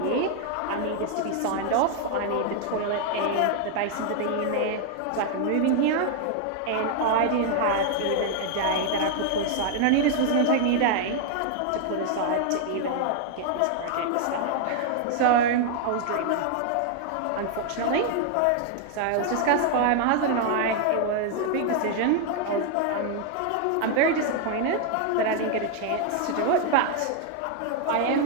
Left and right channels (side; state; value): both; different; correlation 0.00